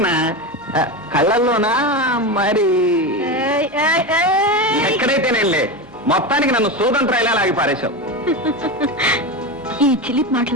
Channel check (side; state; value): both; normal; correlation 0.19